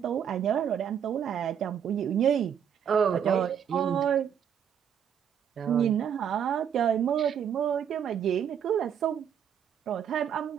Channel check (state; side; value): quieter; left; 8.5 dB